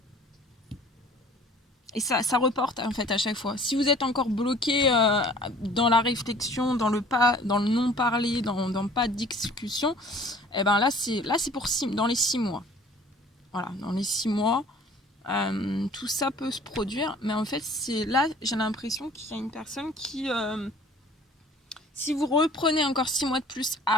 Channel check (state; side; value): normal; both; correlation 0.50